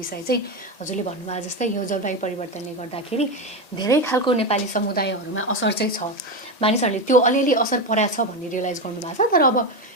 चाहिँ हजुरले भन्नुभयो जस्तै यो जलवायु परिवर्तनले गर्दाखेरि धेरै खालको नेपाली समुदायहरूमा असर चाहिँ छ। मानिसहरूले त्यो अलिअलि असर परेको छ भन्ने रियलाइज गर्नुभएको छ। तर अब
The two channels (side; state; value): right; late; 1.8 ms